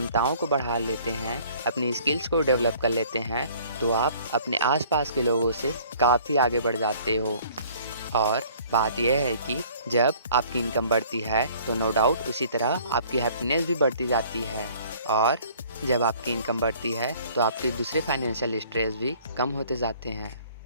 को बढ़ा लेते हैं, अपनी स्किल्स को डेवलप कर लेते हैं, तो आप अपने आसपास के लोगों से काफ़ी आगे बढ़ जाते हो। और बात यह है कि जब आपकी इनकम बढ़ती है तो नो डाउट उसी तरह आपकी हैप्पीनेस भी बढ़ती जाती है, और जब आपकी इनकम बढ़ती है तो आपके दूसरे फाइनेंशियल स्ट्रेस भी कम होते जाते हैं।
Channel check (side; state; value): both; inverted; correlation -0.54